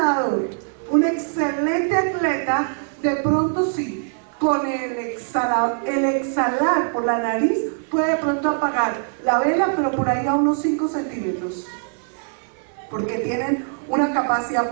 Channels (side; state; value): left; silent; 60 dB below the other